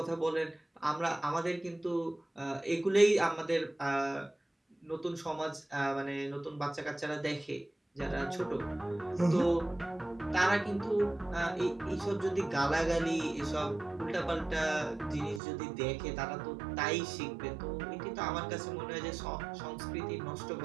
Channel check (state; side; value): drops out; left; at 15.4 s